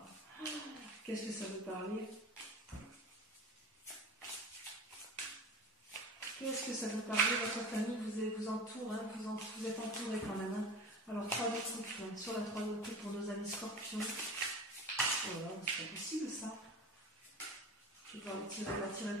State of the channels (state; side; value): normal; both; correlation 0.34